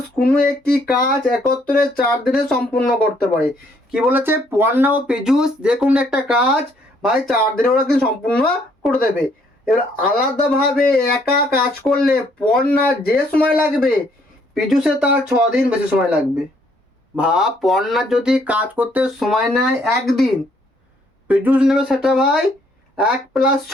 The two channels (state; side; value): normal; both; correlation 0.67